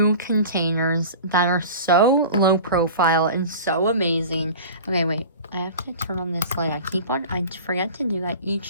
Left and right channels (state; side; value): inverted; both; correlation -0.37